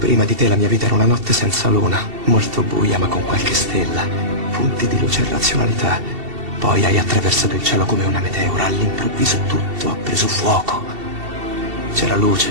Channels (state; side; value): late; left; 2.7 ms